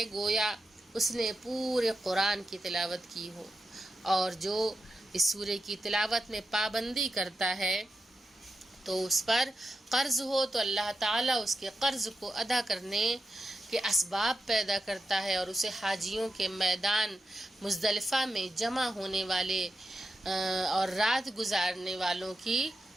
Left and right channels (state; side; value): normal; both; correlation 0.89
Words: گویا اس نے پورے قرآن کی تلاوت کی ہو، اور جو اس سورہ کی تلاوت میں پابندی کرتا ہے تو اس پر قرض ہو تو اللہ تعالیٰ اس کے قرض کو ادا کرنے کے اسباب پیدا کرتا ہے، اور اسے حاجیوں کے میدان مزدلفہ میں جمع ہونے والے اور رات گزارنے والوں کی